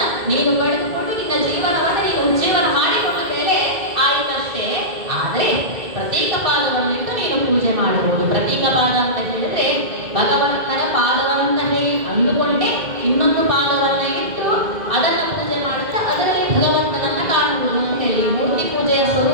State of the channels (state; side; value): late; left; 2.1 ms